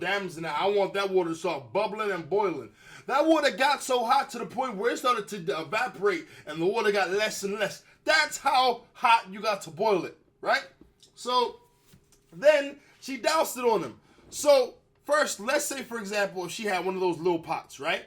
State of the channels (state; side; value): identical; both; correlation 1.00